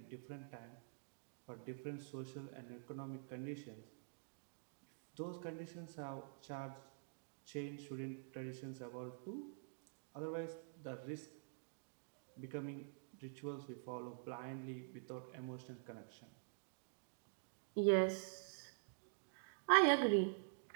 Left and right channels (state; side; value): silent; left; digital silence